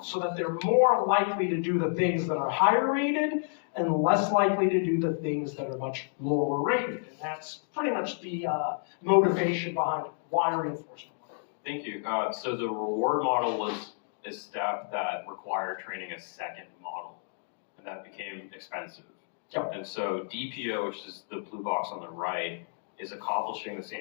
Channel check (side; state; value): right; silent; 58 dB below the other